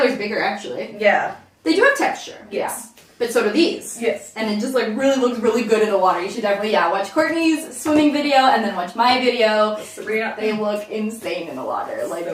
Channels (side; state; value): both; identical; correlation 1.00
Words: bigger actually. Yeah. They do have texture. Yes. Yeah. But so do these. Yes. And it just like really looks really good in the water. You should definitely watch Courtney's swimming video and then watch my video. Sabrina. They look insane in the water. Like So